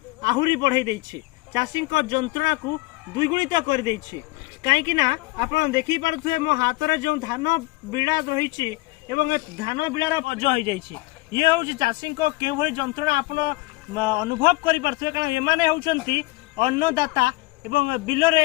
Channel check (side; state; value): right; quieter; 21.5 dB